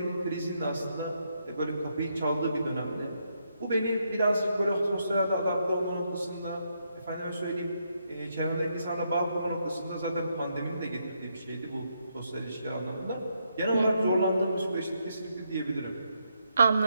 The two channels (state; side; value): inverted; both; correlation -0.78